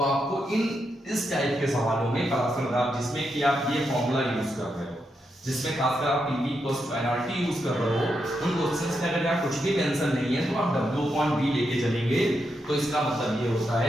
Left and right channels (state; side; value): normal; both; correlation 0.83